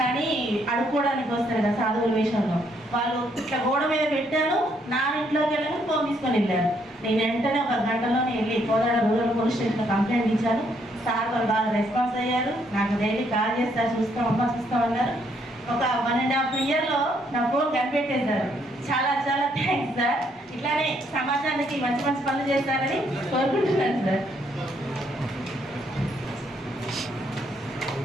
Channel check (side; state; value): both; normal; correlation 0.71